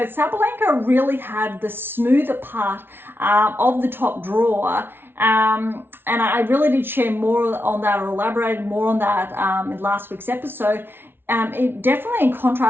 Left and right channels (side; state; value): left; late; 0.11 ms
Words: Sabalenka really had the smoother part of the top draw. And I really did share more on that, or elaborated more on that in last week's episode. It definitely in